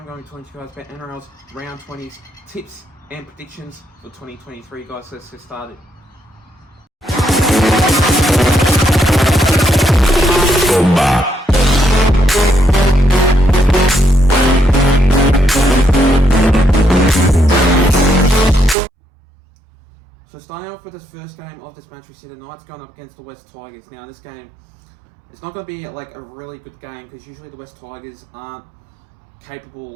going to talk to you guys about NRL's round 20s tips and predictions for 2023 guys. So let's get started. So starting off with this first game of this match, we see the Knights going up against the West Tigers. Now this game, it's not going to be like a really good game because usually the West Tigers aren't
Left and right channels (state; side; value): drops out; left; at 18.8 s